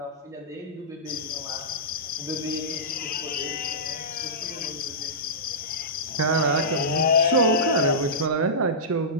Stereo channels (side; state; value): both; normal; correlation -0.17